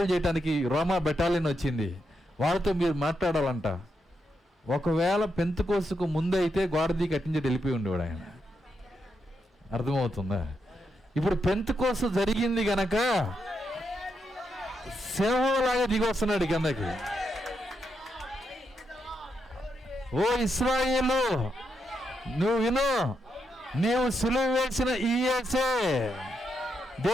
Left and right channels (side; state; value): both; normal; correlation 0.82